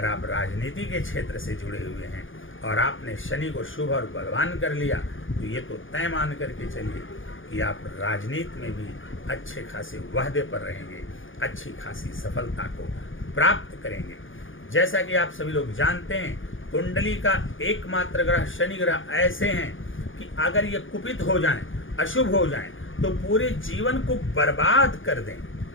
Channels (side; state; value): right; late; 0.58 ms